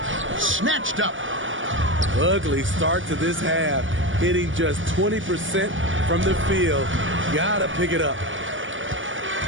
Snatched up. Ugly start to this half. Hitting just 20% from the field. Gotta pick it up.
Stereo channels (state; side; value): late; left; 0.56 ms